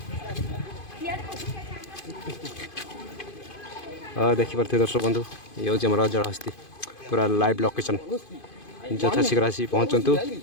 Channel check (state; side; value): late; right; 2.5 ms